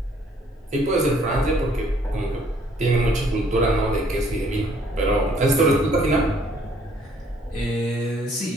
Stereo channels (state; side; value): normal; both; correlation 0.62